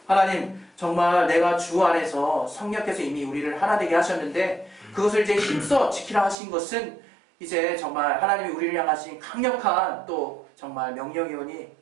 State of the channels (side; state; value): left; drops out; at 6.4 s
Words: 하나님, 정말 내가 주 안에서 성령께서 이미 우리를 하나 되게 하셨는데 그것을 이제 힘써 지키라 하신 것은 이제 정말 하나님이 우리를 향하신 강력한 또 정말 명령이오니